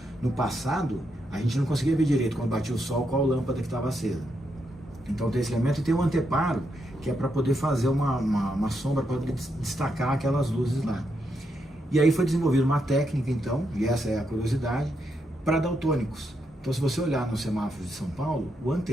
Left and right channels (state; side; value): normal; both; correlation 0.81